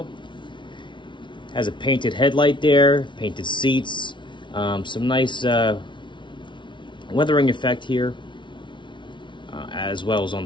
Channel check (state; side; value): late; right; 0.24 ms